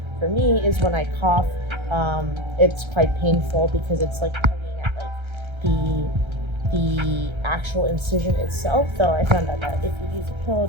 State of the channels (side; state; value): left; late; 1.3 ms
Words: for me is when I cough, it's quite painful because it's like tugging at like the actual incision itself, though I found out that if you use a pillow